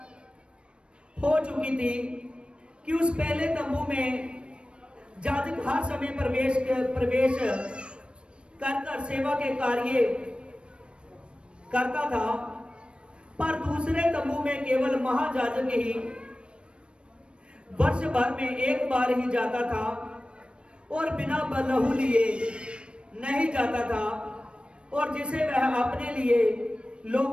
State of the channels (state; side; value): late; left; 0.057 ms